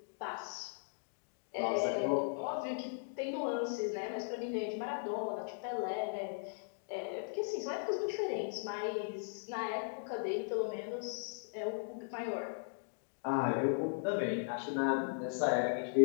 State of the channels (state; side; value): silent; right; digital silence